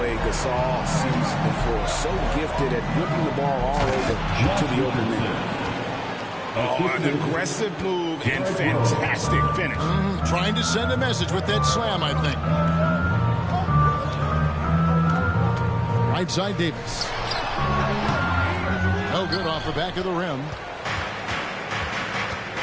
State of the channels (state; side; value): identical; both; correlation 1.00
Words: Gasol sees the floor? So gifted at whipping the ball all over to the open man. Oh, an aggressive move and fantastic finish. Trying to send a message with that slam, I think. Right side Davis. No good off the back of the rim.